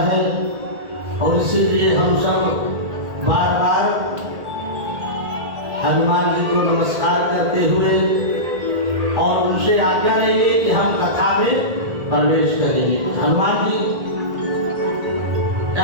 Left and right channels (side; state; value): left; late; 1.8 ms